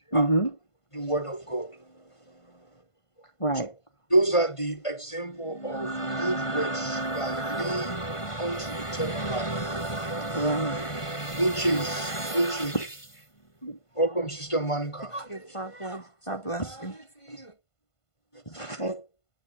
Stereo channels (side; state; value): right; late; 1.5 ms